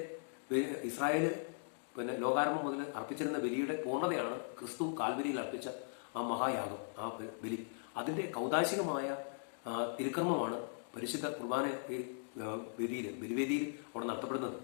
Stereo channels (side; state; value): right; silent; digital silence